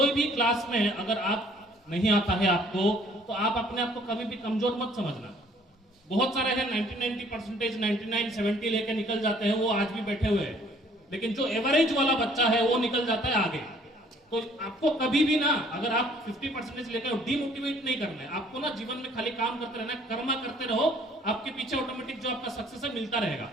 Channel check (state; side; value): normal; both; correlation 0.59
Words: भी क्लास में अगर आप नहीं आता है आपको, तो आप अपने आप को कभी भी कमजोर मत समझना। बहुत सारे हैं 90% 99 70 लेके निकल जाते हैं, वो आज भी बैठे हुए हैं, लेकिन जो एवरेज वाला बच्चा है वो निकल जाता है आगे। तो आपको कभी भी ना, अगर आप 50% लेकर डिमोटिवेट नहीं करना है, आपको ना जीवन में खाली काम करते रहना, कर्मा करते रहो, आपके पीछे ऑटोमेटिक जो आपका सक्सेस है मिलता रहेगा।